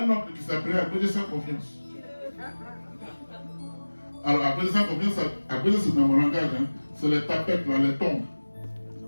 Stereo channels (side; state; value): both; inverted; correlation -1.00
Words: oncle qui s'appelait à cause de sa confiance. Alors, à cause de sa confiance, à cause de c'est dans mon langage, hein, c'est les tapettes, là, les tombes.